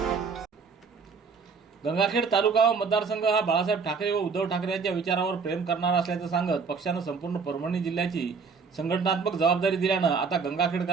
गंगाखेड तालुका व मतदारसंघ हा बाळासाहेब ठाकरे व उद्धव ठाकरे यांच्या विचारावर प्रेम करणारा असल्याचं सांगत पक्षानं संपूर्ण परभणी जिल्ह्याची संघटनात्मक जबाबदारी दिल्यानं आता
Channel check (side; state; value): left; quieter; 5.3 dB